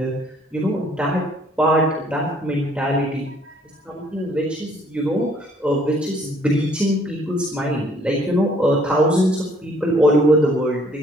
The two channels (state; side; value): normal; both; correlation 0.62